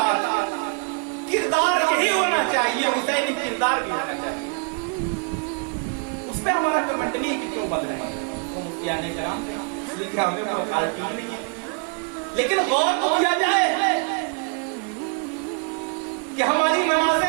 کردار یہی ہونا چاہیے، حسینی کردار بھی ہونا چاہیے۔ اس پہ ہمارا کمنٹ نہیں کہ کیوں بن رہے ہیں، وہ مفتیان کرام تھے، اس لیے کہ ہمیں کوئی اتھارٹی ہی نہیں ہے، لیکن غور تو کیا جائے کہ ہماری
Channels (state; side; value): quieter; left; 39.2 dB